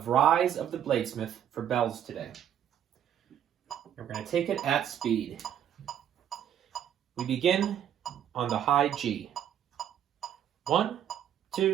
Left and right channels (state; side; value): quieter; left; 9.9 dB